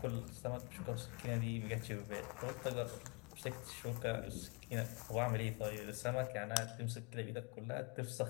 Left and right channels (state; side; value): quieter; right; 31.1 dB